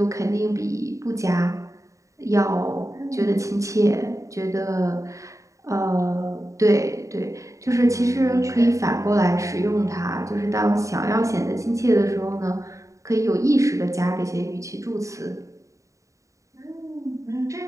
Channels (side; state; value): left; late; 0.15 ms